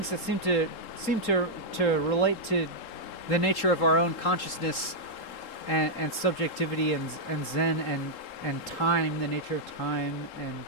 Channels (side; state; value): right; late; 3.7 ms